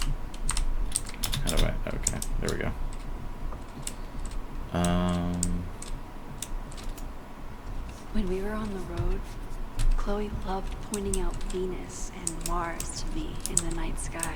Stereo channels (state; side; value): identical; both; correlation 1.00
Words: How do I? Okay, there we go. When we were on the road, Chloe loved pointing out Venus and Mars to me in the night